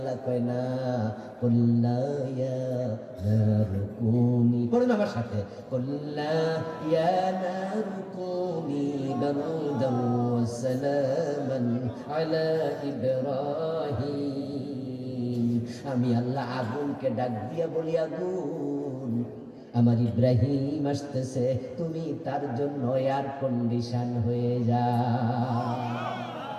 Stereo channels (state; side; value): identical; both; correlation 1.00